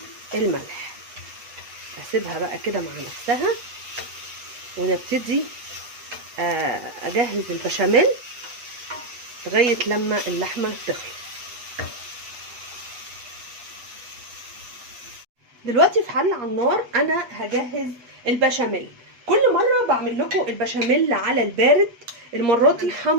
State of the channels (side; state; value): left; late; 8.1 ms